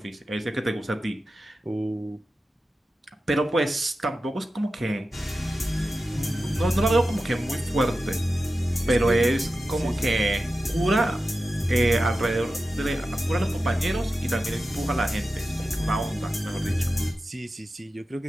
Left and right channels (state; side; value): normal; both; correlation 0.92